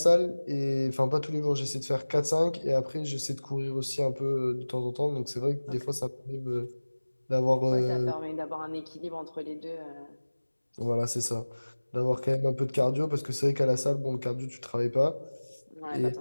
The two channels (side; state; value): both; inverted; correlation -1.00